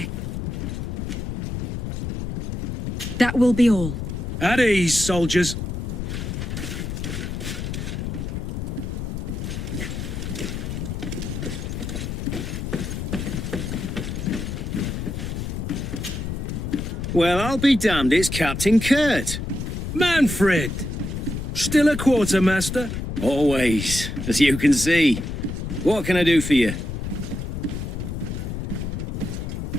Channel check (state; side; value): noise; left; rumble, 4 dB below the sound